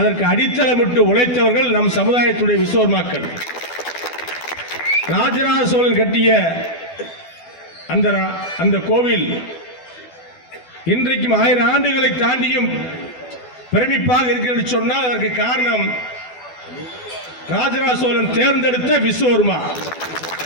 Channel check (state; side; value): late; right; 12 ms